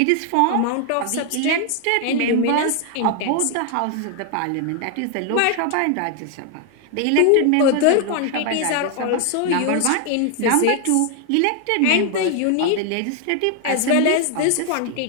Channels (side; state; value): both; different; correlation 0.00